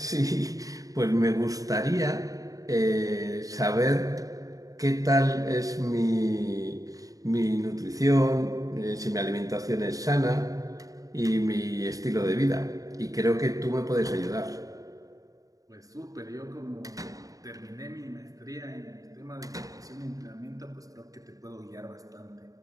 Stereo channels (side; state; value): left; late; 0.17 ms